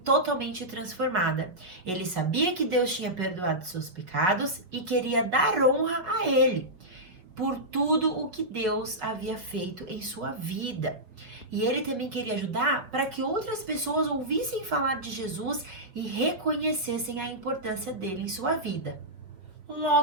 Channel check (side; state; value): left; late; 5.4 ms